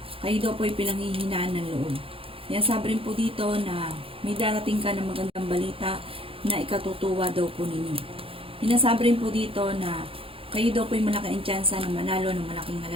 Kayo daw po ay pinanghihinaan ng loob. Kaya sabi rin po dito na may darating ka ng magandang balita na ikatutuwa daw po ninyo. Sinasabi rin po dito na kayo daw po ay malaking tsansa na manalo ng malaking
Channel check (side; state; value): left; late; 0.27 ms